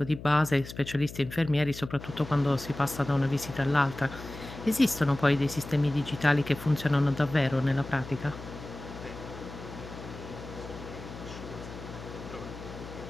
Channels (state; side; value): noise; left; hum, 13 dB below the sound